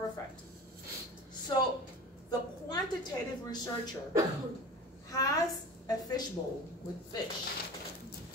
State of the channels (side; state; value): both; normal; correlation 0.35